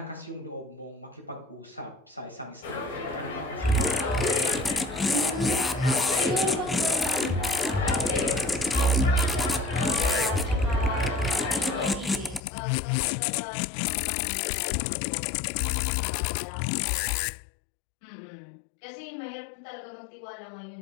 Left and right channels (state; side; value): drops out; right; at 12.4 s